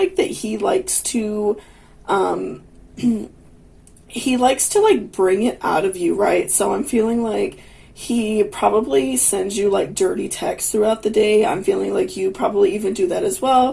that he likes to he likes to like bring it out of you, right? So I'm feeling like he probably sends you like dirty texts throughout the day. I'm feeling like you probably even do that as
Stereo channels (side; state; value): both; identical; correlation 1.00